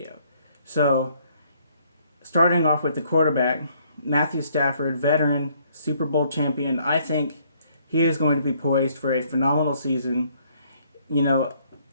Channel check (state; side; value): inverted; both; correlation -0.66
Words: So, starting off with the quarterback, Matthew Stafford, veteran, Super Bowl champion. I think he is going to be poised for a phenomenal season.